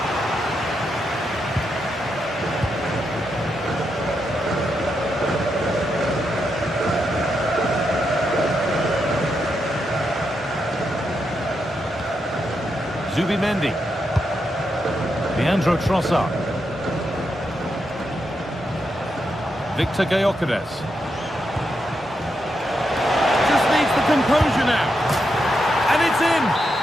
Zubimendi. Leandro Trossard. Victor Gyökeres. Just needs the composure now. And it's in!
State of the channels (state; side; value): normal; both; correlation 0.83